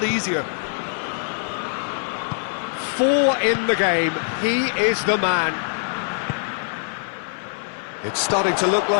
easier. 4 in the game, he is the man. It's starting to look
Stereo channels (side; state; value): right; silent; 55 dB below the other